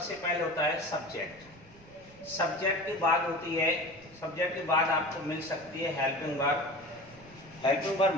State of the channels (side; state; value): right; noise; rumble, 24 dB below the sound